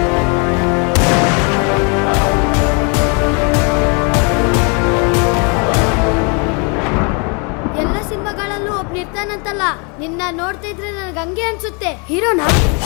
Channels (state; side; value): quieter; right; 34.2 dB